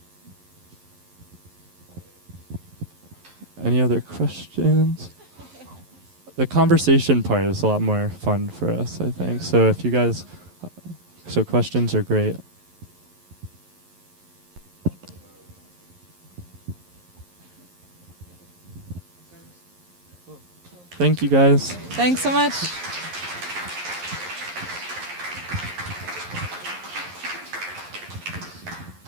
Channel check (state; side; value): late; left; 11 ms